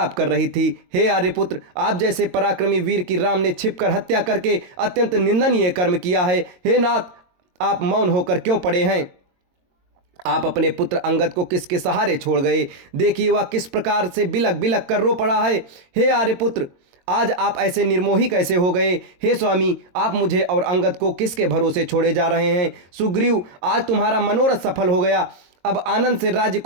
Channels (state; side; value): late; left; 22 ms